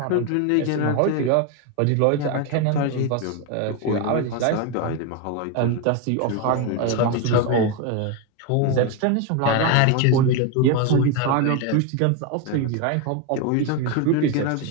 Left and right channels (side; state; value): both; different; correlation 0.02